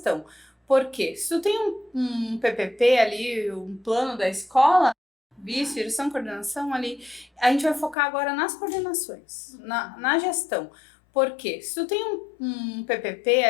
Por quê? Se tu tem um PPP ali, um plano da escola, vice, direção, coordenação ali, a gente vai focar agora nas coordenações, na gestão. Por quê? Se tu tem um PPP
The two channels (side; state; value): right; drops out; at 8.0 s